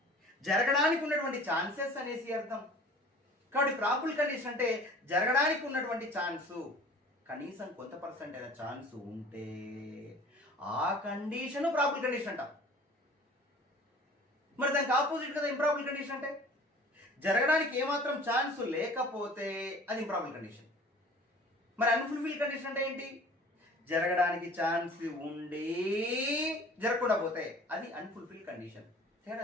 జరగడానికి ఉన్నటువంటి ఛాన్సెస్ అనేసి అర్థం. కాబట్టి ప్రాబబుల్ కండిషన్ అంటే జరగడానికి ఉన్నటువంటి ఛాన్సు, కనీసం కొంత పర్సెంట్ అయిన ఛాన్స్ ఉంటే ఆ కండిషన్ ప్రాబబుల్ కండిషన్ అంటాం. మరి దానికి ఆపోజిట్ కదా ఇంప్రాబుల్ కండిషన్ అంటే? జరగడానికి ఏమాత్రం ఛాన్స్ లేకపోతే అది ఇంప్రాబుల్ కండిషన్. మరి అన్ఫుల్ఫిల్ కండిషన్ అంటే ఏంటి? జరగడానికి ఛాన్స్ ఉండి జరగకుండా పోతే అది అన్ఫుల్ఫిల్ కండిషన్. తేడా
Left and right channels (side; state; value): both; normal; correlation 0.46